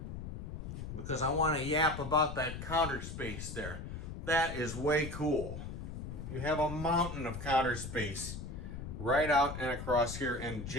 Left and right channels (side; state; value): left; noise; rumble, 7 dB below the sound